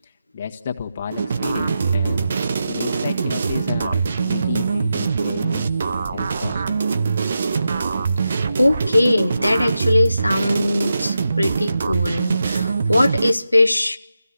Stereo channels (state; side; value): inverted; both; correlation -0.89